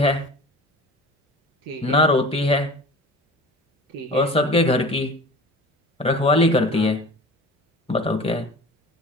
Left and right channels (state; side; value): normal; both; correlation 0.39